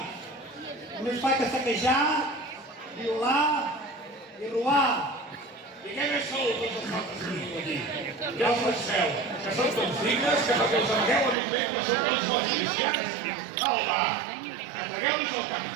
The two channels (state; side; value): drops out; left; at 11.4 s